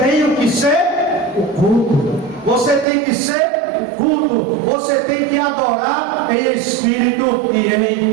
que ser o culto. Você tem que ser o culto. Você tem que adorar em espírito e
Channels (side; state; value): left; drops out; at 2.9 s